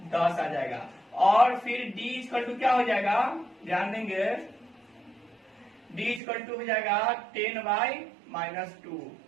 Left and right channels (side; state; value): left; drops out; at 6.2 s